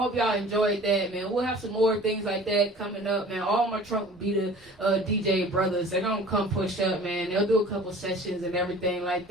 y'all enjoyed that, man. We'll have some more things like that coming up, man. All my Trunk Beater DJ brothers, they're going to come push up, man. They'll do a couple sessions and everything like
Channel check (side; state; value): both; normal; correlation 0.45